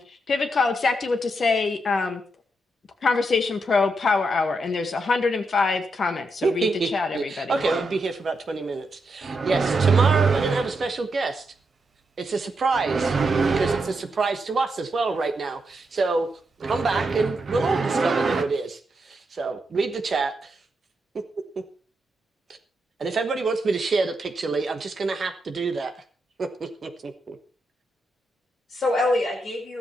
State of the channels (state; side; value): normal; both; correlation 0.83